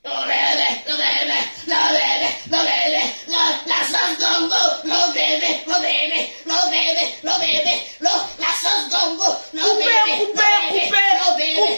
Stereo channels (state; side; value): inverted; both; correlation -1.00